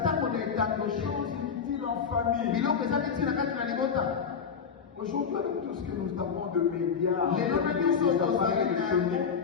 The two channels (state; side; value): quieter; right; 6.4 dB